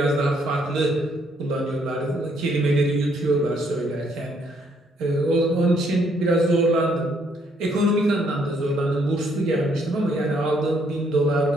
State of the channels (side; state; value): both; normal; correlation 0.69